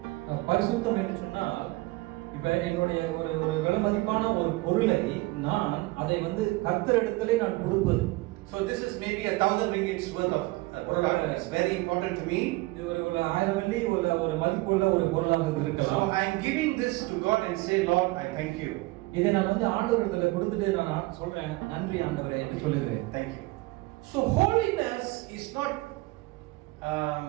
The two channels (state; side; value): quieter; left; 21.7 dB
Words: பரிசுத்தம் என்று சொன்னால் இப்ப என்னுடைய ஒரு விலைமதிப்பான ஒரு பொருளை நான் அதை வந்து கர்த்தரிடத்திலே நான் கொடுப்பது. So this is maybe 1,000 ringgits worth of product. It's very important to me. இது ஒரு 1000 வெள்ளி ஒரு மதிப்புள்ள ஒரு பொருளாக இருக்கலாம். So I am giving this to God and say, Lord, I thank you. இதை நான் வந்து ஆண்டவரிடத்துல கொடுத்துட்டு நான் சொல்றேன், நன்றி ஆண்டவரே என்று சொல்லுகிறேன். Thank you. So holiness is not